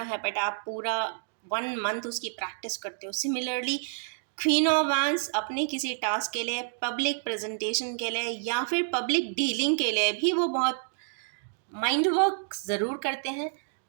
है, बट आप पूरा 1 मंथ उसकी प्रैक्टिस करते हो। सिमिलरली क्वीन ऑफ वैंस अपने किसी टास्क के लिए, पब्लिक प्रेजेंटेशन के लिए या फिर पब्लिक डीलिंग के लिए भी वो बहुत माइंड वर्क ज़रूर करते हैं,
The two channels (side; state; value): left; silent; digital silence